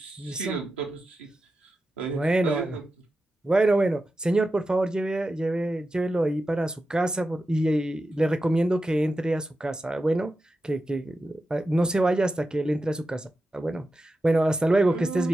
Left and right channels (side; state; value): both; normal; correlation 0.91